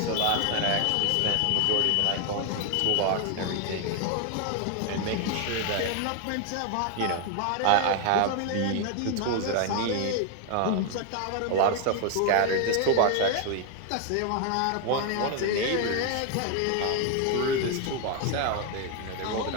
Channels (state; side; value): different; both; correlation 0.01